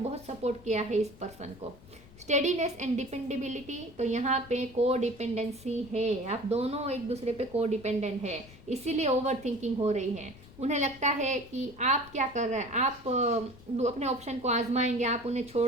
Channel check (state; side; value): noise; left; rumble, 21 dB below the sound